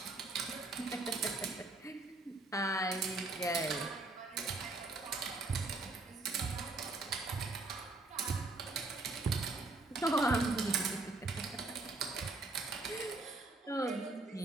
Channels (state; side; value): quieter; left; 3.1 dB